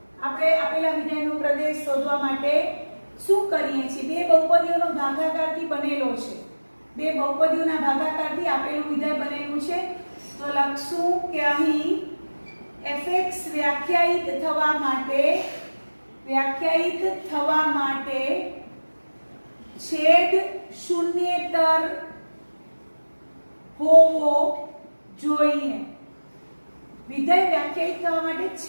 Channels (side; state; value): both; inverted; correlation -1.00